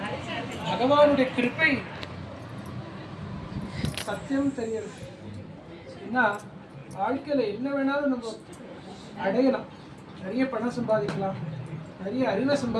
பகவானுடைய கிருப்பை சத்தியம் தெரியுது. ஏன்னா வாழ்க்கையில் என்ன வேணாலும் நம்ம அடையலாம். நிறைய பணம் சம்பாதிக்கலாம், நிறைய அறிவை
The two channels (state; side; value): identical; both; correlation 1.00